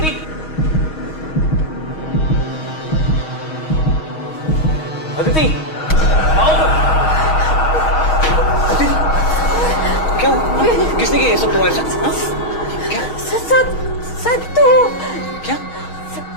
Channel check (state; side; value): late; right; 6.3 ms